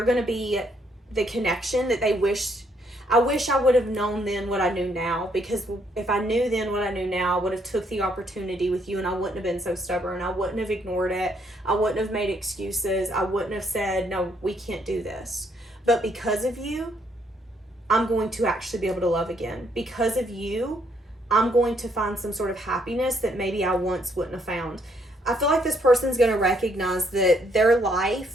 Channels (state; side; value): normal; both; correlation 0.71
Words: going to be the connection that they wish. I wish I would have known then what I knew now. Because if I knew then what I knew now, I would have took the opportunity with you, and I wouldn't have been so stubborn. I wouldn't have ignored it. I wouldn't have made excuses. I wouldn't have said, no, we can't do this. But because of you, I'm going to actually be able to love again. Because of you, I'm going to find some sort of happiness that maybe I once wouldn't have found. I feel like this person's going to recognize that their